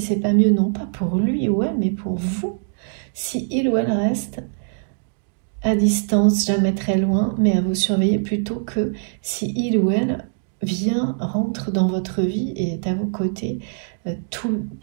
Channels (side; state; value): left; silent; digital silence